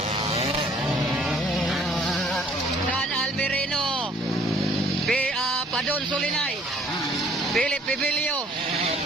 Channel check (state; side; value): normal; both; correlation 0.58